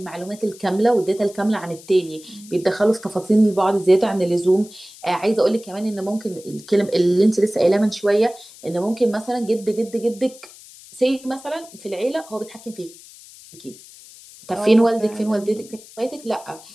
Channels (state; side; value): noise; left; hiss, 20 dB below the sound